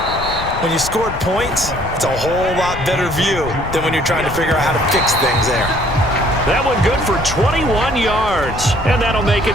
When you scored points, it's a whole lot better view than when you're trying to figure out how to fix things there. That one good for 21 yards, and that'll make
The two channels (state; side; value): noise; left; rumble, 10 dB below the sound